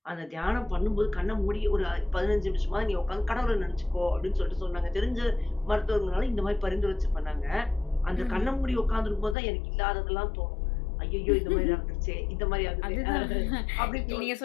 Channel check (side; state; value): right; drops out; at 9.3 s